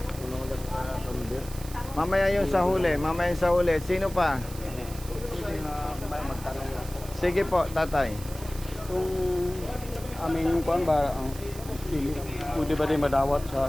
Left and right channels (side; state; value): right; noise; hiss, 16 dB below the sound